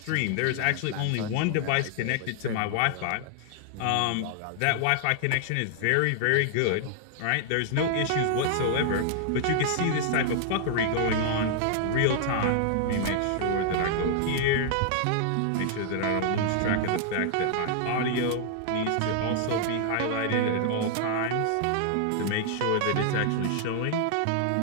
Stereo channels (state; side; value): different; both; correlation 0.00